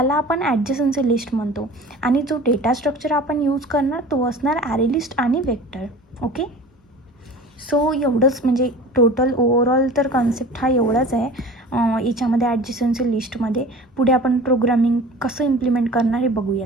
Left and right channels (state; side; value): normal; both; correlation 0.40